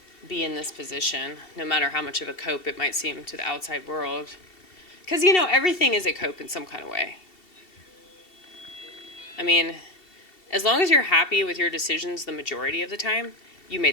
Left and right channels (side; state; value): right; late; 2.7 ms